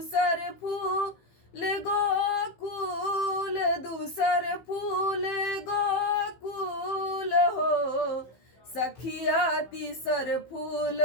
फूल गोकुल, दूसर फूल गोकुल हो। सखिया तीसर फूल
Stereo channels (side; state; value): right; late; 15 ms